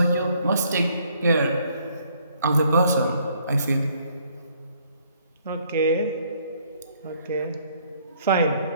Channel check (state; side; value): inverted; both; correlation -0.65